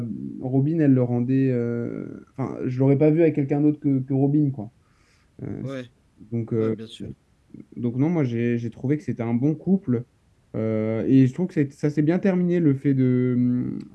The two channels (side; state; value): both; identical; correlation 1.00